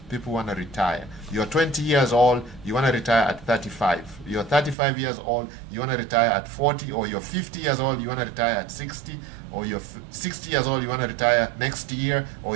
People want to retire. You're 20 years old, you want to retire at 35. You're 35 years old, you want to retire at 40, or you're 50 years old, you want to retire at 60, or you're 60 years old, you want to retire next year, or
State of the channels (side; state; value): left; drops out; at 4.8 s